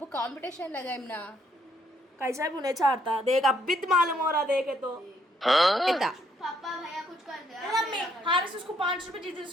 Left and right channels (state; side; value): normal; both; correlation 0.70